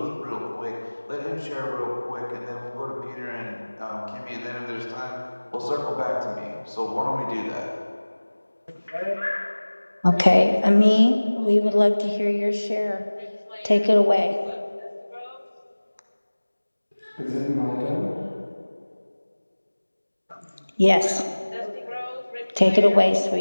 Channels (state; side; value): inverted; both; correlation -1.00